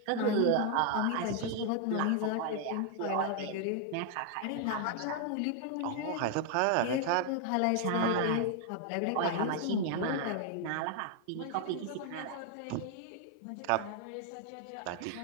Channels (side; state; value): both; different; correlation 0.00